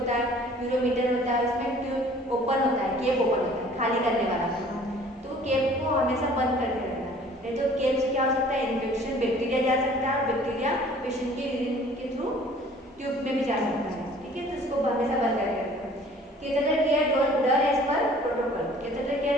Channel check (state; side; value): normal; both; correlation 0.52